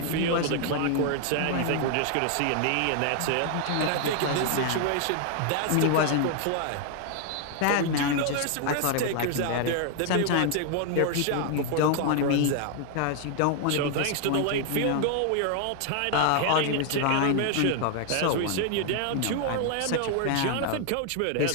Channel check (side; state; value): both; different; correlation 0.00